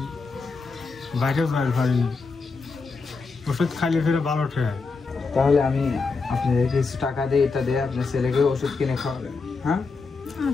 বাইরেও যাই পারিনি। ওষুধ খাইলে ফিরে ভালো ঠেয়। তাহলে আমি আপনাদের কিছু টাকা দিয়ে এটা দিয়ে আপনার ছেলেকে ওষুধ কিনে খাওয়াবেন। হ্যাঁ,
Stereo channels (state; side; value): quieter; right; 4.4 dB